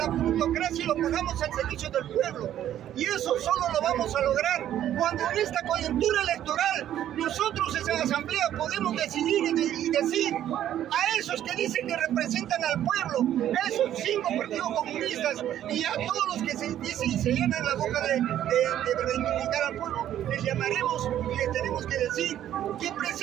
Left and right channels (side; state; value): left; quieter; 11.4 dB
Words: plutocracia y lo pongamos al servicio del pueblo. Y eso solo lo vamos a lograr cuando en esta coyuntura electoral nosotros en la asamblea podemos decidir y decir a esos que dicen que representan al pueblo, a esos 5 partidos comunistas y a todos los que se dicen y se llenan la boca de reivindicar al pueblo, les llamaremos y les tenemos que decir que